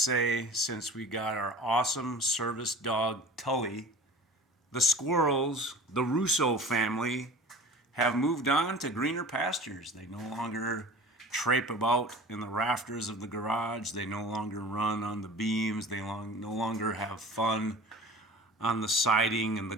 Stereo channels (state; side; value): normal; both; correlation 0.39